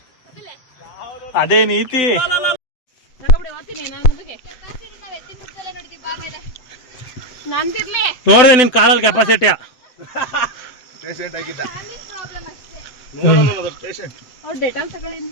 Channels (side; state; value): right; late; 7.9 ms